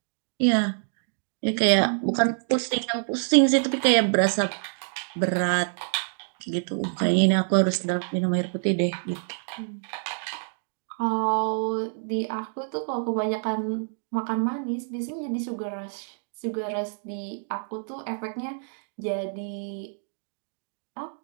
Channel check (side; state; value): left; silent; digital silence